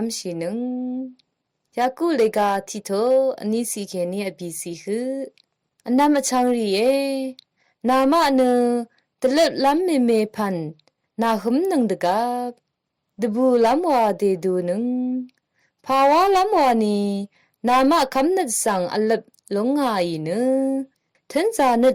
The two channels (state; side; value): identical; both; correlation 1.00